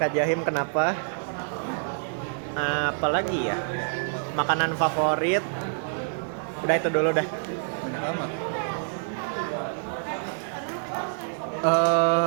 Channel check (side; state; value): left; silent; digital silence